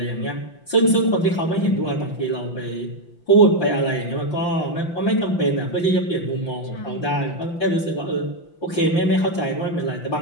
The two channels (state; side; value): late; right; 5.8 ms